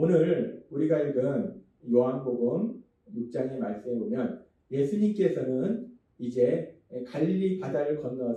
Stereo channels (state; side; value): identical; both; correlation 1.00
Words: 우리가 읽은 요한복음 6장의 말씀에 보면 예수님께서는 이제 갈릴리 바다를